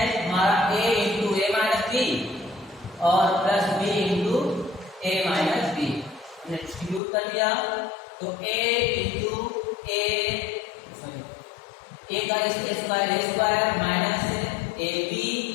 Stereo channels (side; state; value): right; drops out; at 7.0 s